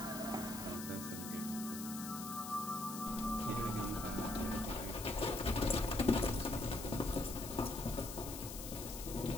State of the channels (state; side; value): noise; left; hiss, 8 dB below the sound